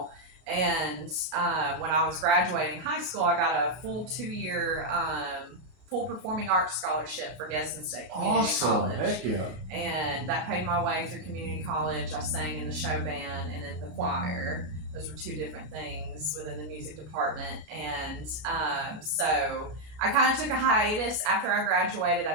And when I was graduating high school, I got a full 2-year full performing arts scholarship for Gadsden State Community College. Heck yeah. And that paid my way through community college. I sang in the show band and in the choir. Those were 2 different things within the music department. And so I kind of took a hiatus after I graduated.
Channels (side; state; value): left; late; 33 ms